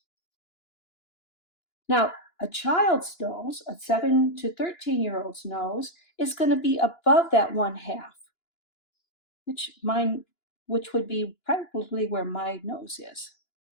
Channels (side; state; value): right; late; 2.9 ms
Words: Now, a child's nose, a 7 to 13-year-old's nose, is going to be above that 1/2, which would be probably where my nose is.